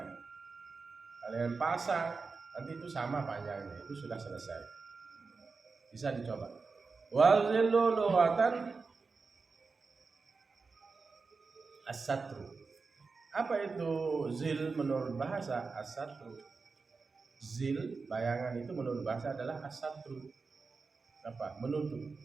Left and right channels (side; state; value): left; quieter; 4.5 dB